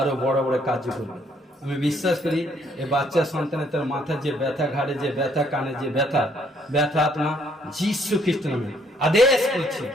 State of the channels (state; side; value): normal; both; correlation 0.67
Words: বড় বড় কাজ করবে। আমি বিশ্বাস করি এই বাচ্চা সন্তানের তার মাথার যে ব্যথা, ঘাড়ে যে ব্যথা, কানে যে ব্যথা আত্মা যীশু খ্রিস্ট নামে আদেশ করছি,